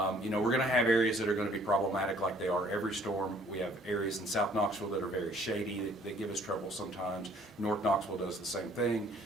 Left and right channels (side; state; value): both; normal; correlation 0.59